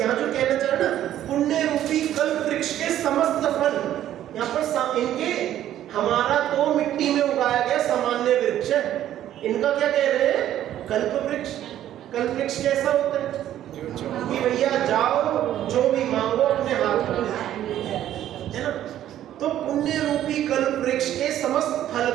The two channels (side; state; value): left; quieter; 12.0 dB